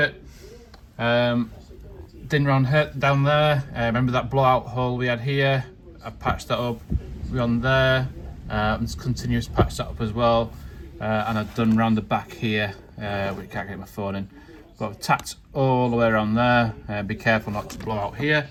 Din round down there, remember that blowout hole we had here? I patched that up. We're on there, and continuous patch that up as well. And I've done round the back here, we can't get my phone in, but I've tacked all the way around there. Be careful not to blow out here,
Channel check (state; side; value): identical; both; correlation 1.00